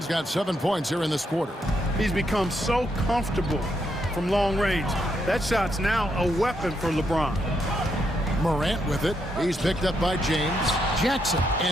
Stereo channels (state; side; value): normal; both; correlation 0.78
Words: got 7 points here in this quarter. He's become so comfortable from long range. That shot's now a weapon for LeBron. Morant with it. He's picked up by James. Jackson,